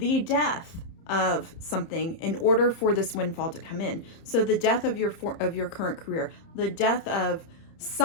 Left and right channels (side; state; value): right; late; 30 ms